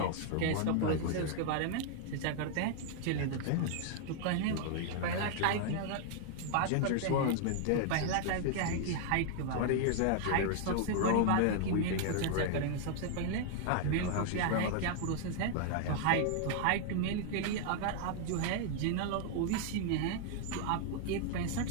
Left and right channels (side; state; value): both; different; correlation 0.00